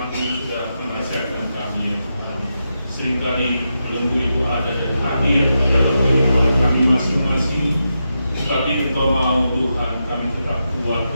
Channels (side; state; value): both; inverted; correlation -0.87